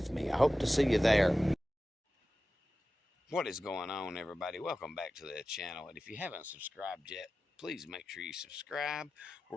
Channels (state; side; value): normal; both; correlation 0.94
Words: me. I hope to see you there. What is going on, everybody? Welcome back to the channel, and if you haven't subscribed yet, please make sure you subscribe.